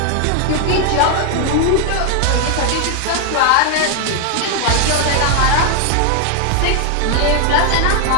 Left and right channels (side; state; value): both; different; correlation 0.00